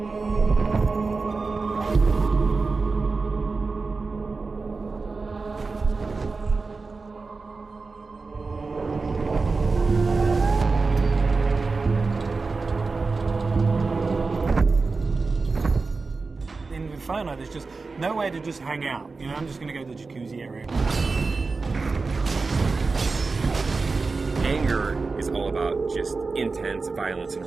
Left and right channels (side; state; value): left; quieter; 4.1 dB